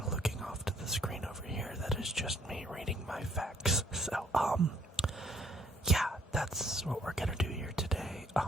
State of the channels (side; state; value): both; normal; correlation 0.64